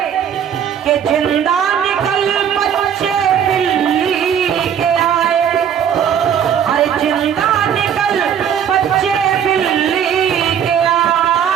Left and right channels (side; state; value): left; quieter; 8.6 dB